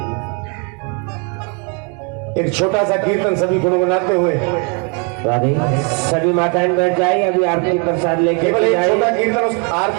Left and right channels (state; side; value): quieter; left; 35.5 dB